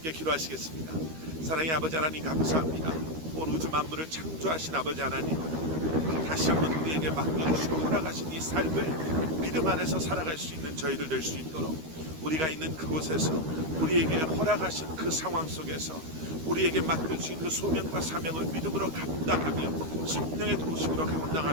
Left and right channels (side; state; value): left; late; 13 ms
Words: 기도하시겠습니다. 사랑의 아버지 하나님, 감사합니다. 온 우주 만물을 창조하신 아버지 하나님, 다시 한번 우리에게 맡겨주시고 허락하신 이 삶을 믿음 안에서 살아갈 수 있는 저희들 될 수 있도록 우리가 있는 그곳에서 우리에게 허락하신 그 상황 속에서 우리에게 맡겨주신 그 소명과 사명을 믿음으로 감당하며 성령의 도우심으로